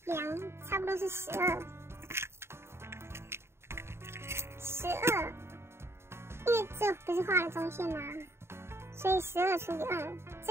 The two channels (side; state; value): left; late; 0.12 ms